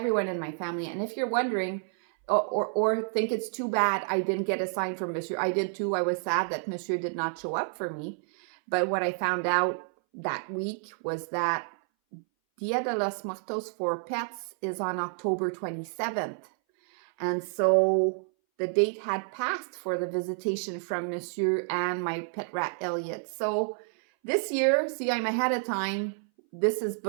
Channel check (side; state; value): left; silent; 58 dB below the other